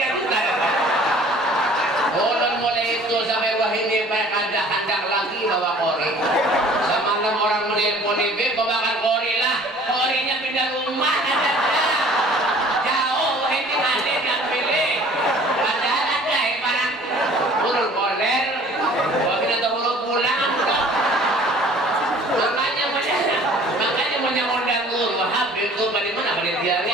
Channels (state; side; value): normal; both; correlation 0.51